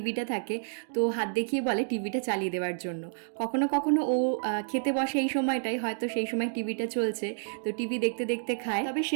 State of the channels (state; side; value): silent; left; digital silence